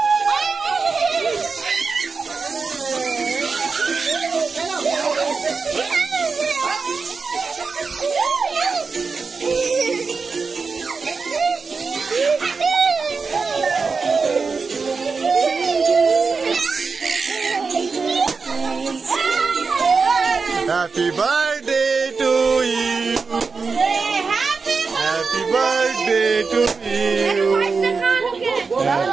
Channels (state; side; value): quieter; left; 4.7 dB